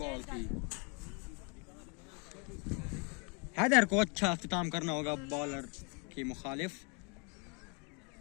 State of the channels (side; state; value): right; quieter; 34.6 dB